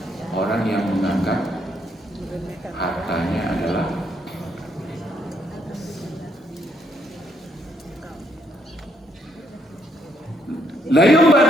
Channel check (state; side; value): normal; both; correlation 0.73